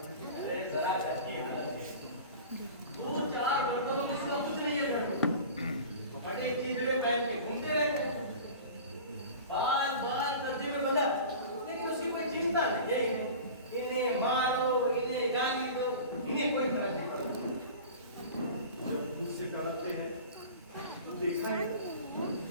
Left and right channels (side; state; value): both; inverted; correlation -0.38